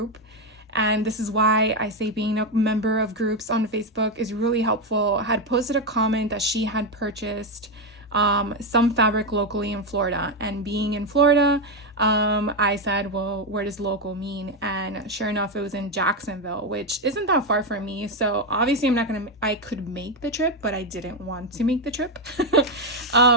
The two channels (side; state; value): both; normal; correlation 0.07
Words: and this is why I say being a member of groups on Facebook is really helpful, had posted a comment that she had purchased some fabric locally in Florida. And being in Florida, I said, well, where does local mean? And sure enough, it was in Jacksonville, which isn't that far from me. So obviously I could make the trip, but I didn't want to make the trip.